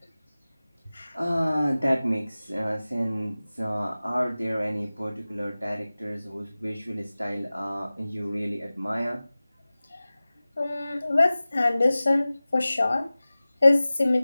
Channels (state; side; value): inverted; both; correlation -0.97